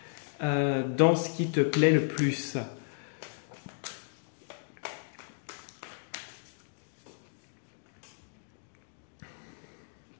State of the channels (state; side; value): silent; right; digital silence